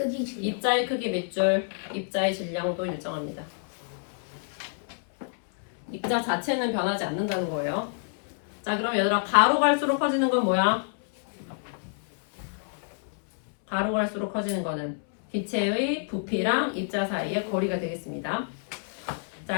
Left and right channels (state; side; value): silent; right; 59 dB below the other